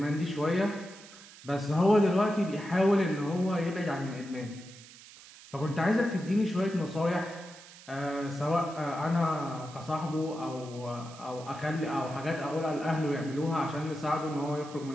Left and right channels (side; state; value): right; noise; hiss, 19 dB below the sound